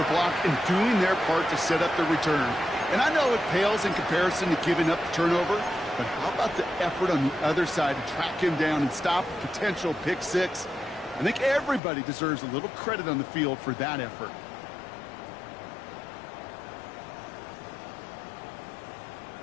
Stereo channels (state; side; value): drops out; right; at 11.8 s